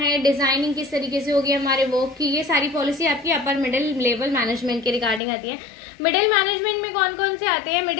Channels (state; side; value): drops out; right; at 5.2 s